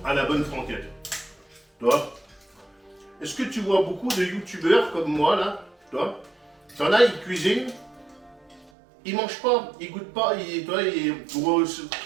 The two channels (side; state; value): left; drops out; at 8.7 s